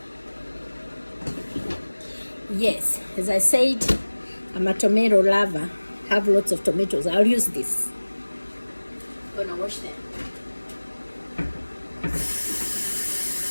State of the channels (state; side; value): inverted; both; correlation -1.00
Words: Yes, as I said, I'm a tomato lover. Have lots of tomatoes. I'll use this. I'm gonna wash them.